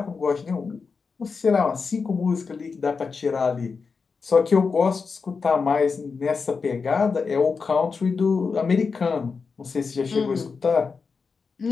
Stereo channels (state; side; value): quieter; right; 5.0 dB